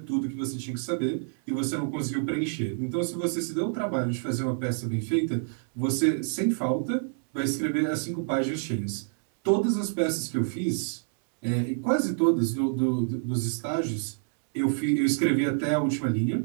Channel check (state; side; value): silent; left; 60 dB below the other